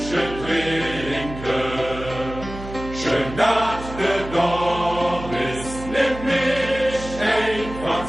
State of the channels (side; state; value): right; noise; hum, 11 dB below the sound